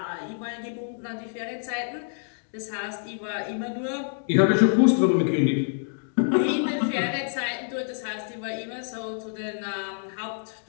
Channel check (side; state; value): right; silent; digital silence